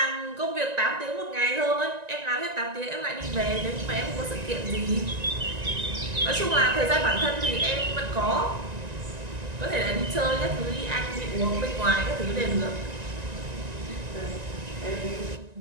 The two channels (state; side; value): late; left; 1.9 ms